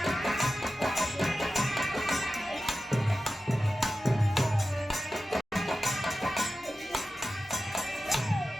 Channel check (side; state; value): both; normal; correlation 0.93